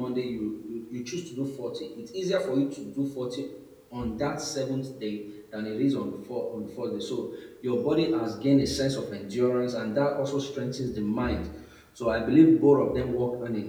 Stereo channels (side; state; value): both; identical; correlation 1.00